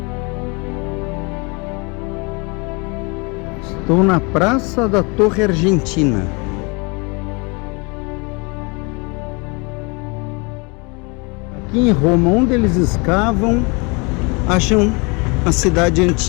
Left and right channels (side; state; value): right; quieter; 30.1 dB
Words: Estou na Praça da Torre Argentina. Aqui em Roma, onde eles escavam, acham a cidade